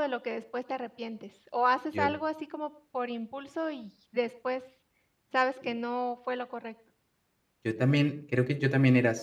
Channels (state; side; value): identical; both; correlation 1.00